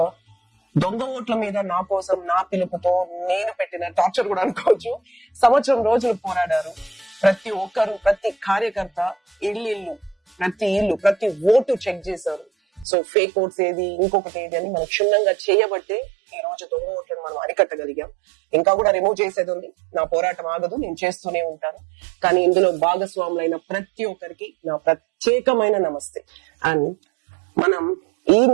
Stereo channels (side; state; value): left; drops out; at 12.9 s